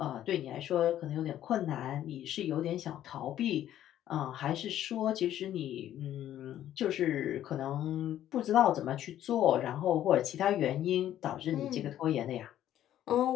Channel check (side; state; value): right; quieter; 11.9 dB